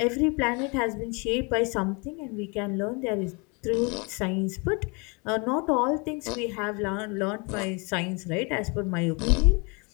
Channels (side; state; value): right; quieter; 31.3 dB